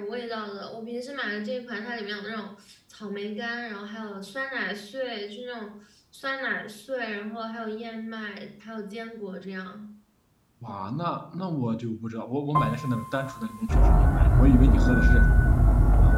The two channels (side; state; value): both; identical; correlation 1.00